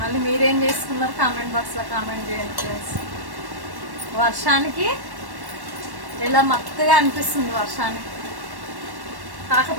మీరేం చేసుకున్నారు కామెంట్ బాక్స్లో కామెంట్ చేయండి ఫ్రెండ్స్. వర్షానికి ఎలా మత్తుగా అనిపిస్తుంది వర్షానికి.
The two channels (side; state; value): left; late; 1.1 ms